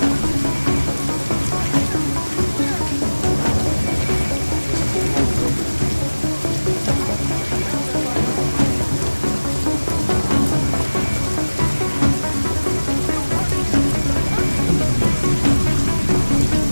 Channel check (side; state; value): both; inverted; correlation -1.00